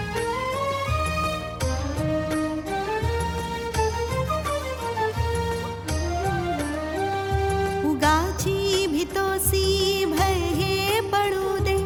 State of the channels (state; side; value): identical; both; correlation 1.00